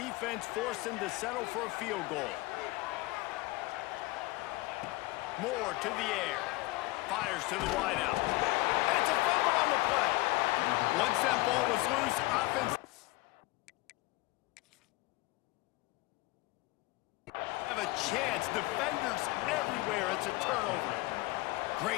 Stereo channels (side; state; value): right; quieter; 21.0 dB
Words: force them to settle for a field goal? Moore to the air. Fires to the wideout. It's a fumble on the play. Once that ball was loose, offense have a chance. Defenders everywhere. It's a turnover.